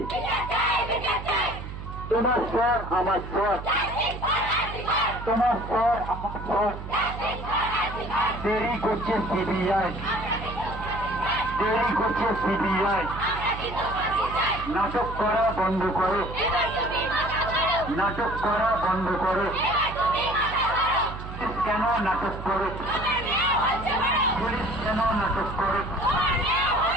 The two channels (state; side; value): noise; right; hum, 9 dB below the sound